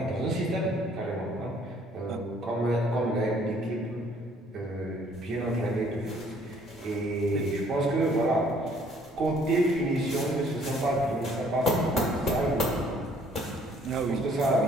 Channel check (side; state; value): both; normal; correlation 0.61